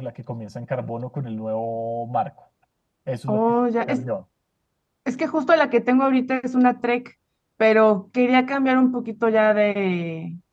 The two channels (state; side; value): identical; both; correlation 1.00